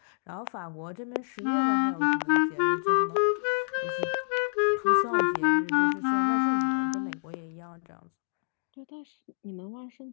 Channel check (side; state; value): right; silent; digital silence